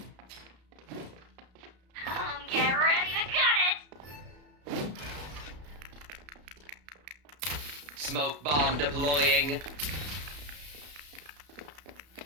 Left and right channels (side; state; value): left; late; 33 ms